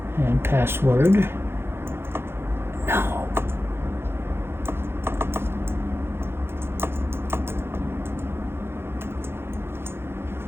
And password. No.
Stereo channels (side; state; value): left; late; 0.11 ms